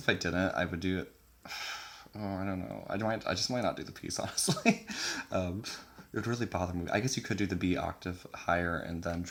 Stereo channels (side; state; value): both; identical; correlation 1.00